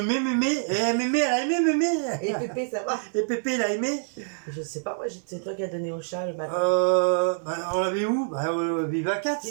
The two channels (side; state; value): left; silent; digital silence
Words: mémé. Et mémé, elle a aimé mémé. Et Pépé, ça va? Et Pépé, il a aimé. Je sais pas, moi, c'est toi qui as donné au chat le matin. On l'avait où? Bah, Viva 4.